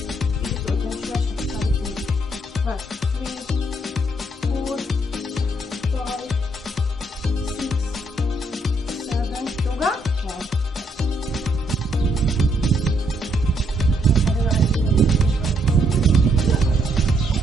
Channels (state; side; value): normal; both; correlation 0.73